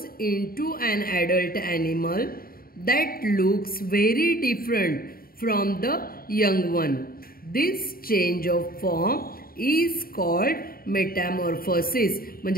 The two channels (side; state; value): right; late; 0.43 ms